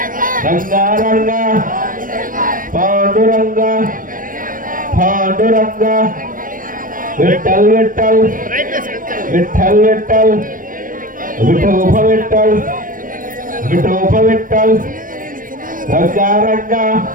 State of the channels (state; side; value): late; left; 0.40 ms